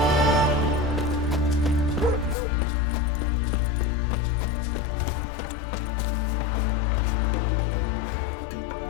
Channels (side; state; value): right; drops out; at 2.4 s